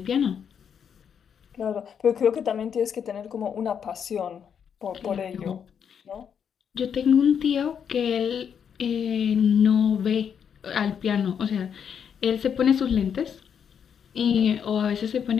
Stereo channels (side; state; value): right; quieter; 7.7 dB